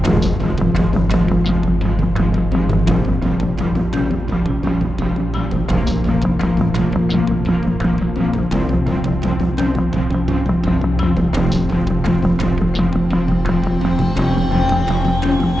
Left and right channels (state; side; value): normal; both; correlation 0.90